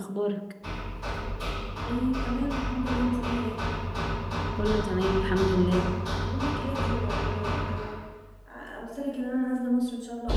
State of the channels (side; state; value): both; identical; correlation 1.00